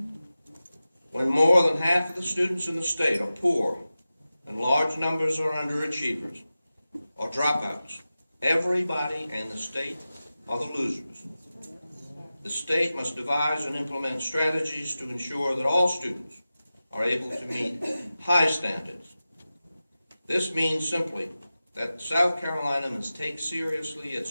When more than half of the students in the state are poor and large numbers are underachievers or dropouts, everybody in the state are the losers. The state must devise and implement strategies to ensure that all students are able to meet high standards. This means simply that South Carolina must take seriously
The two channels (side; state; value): both; inverted; correlation -0.95